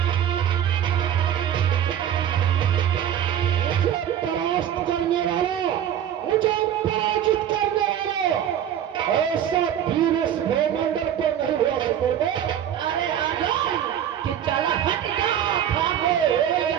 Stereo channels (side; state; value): left; quieter; 10.1 dB